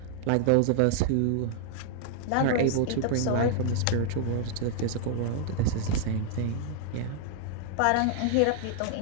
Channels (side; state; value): both; different; correlation 0.00